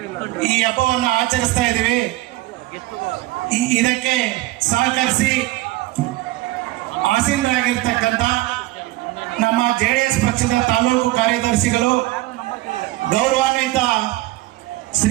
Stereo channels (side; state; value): left; quieter; 18.4 dB